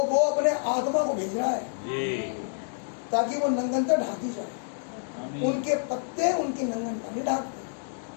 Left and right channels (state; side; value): silent; right; digital silence